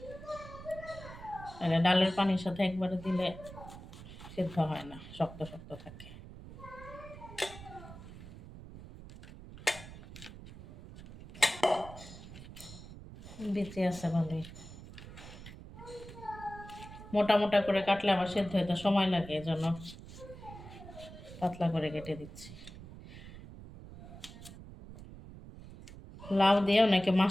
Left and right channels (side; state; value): right; noise; rumble, 15 dB below the sound